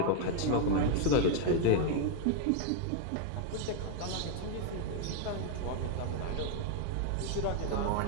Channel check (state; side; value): different; both; correlation 0.00